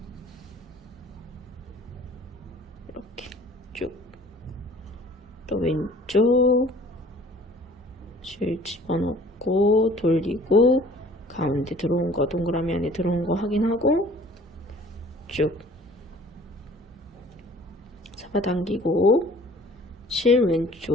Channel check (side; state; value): both; normal; correlation 0.51